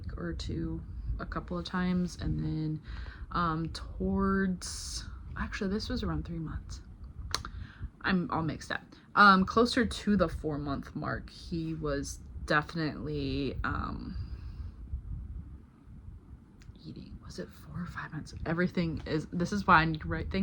or two a couple of times. And then towards, actually this was around 3 months. I'm all mixed up. Closer to the 4-month mark, he was definitely eating. Was it 4 or 5 months? Everything is, this is why I need to write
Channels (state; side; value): identical; both; correlation 1.00